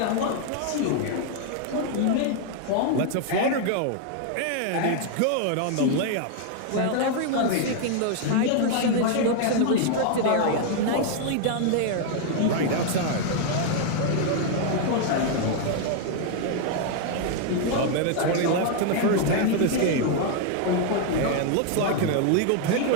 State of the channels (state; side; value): different; both; correlation 0.00